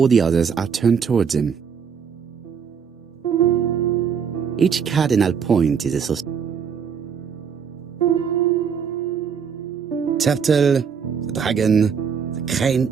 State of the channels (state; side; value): quieter; left; 6.7 dB